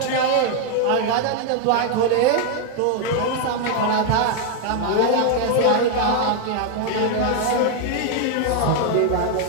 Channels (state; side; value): different; both; correlation 0.00